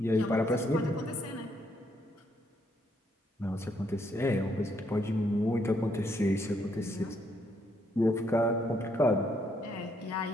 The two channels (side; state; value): both; normal; correlation 0.73